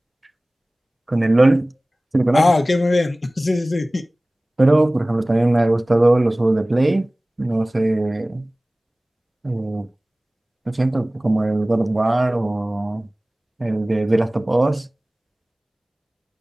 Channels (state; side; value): normal; both; correlation 0.98